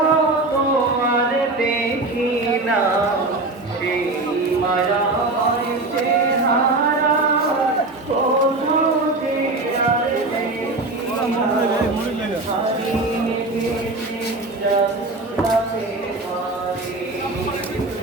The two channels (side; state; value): left; quieter; 3.1 dB